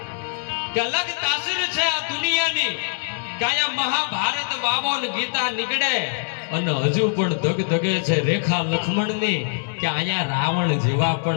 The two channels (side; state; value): right; silent; digital silence